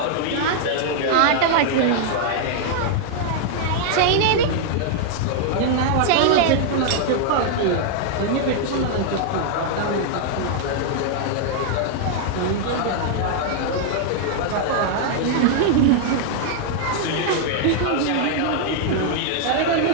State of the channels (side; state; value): both; different; correlation 0.00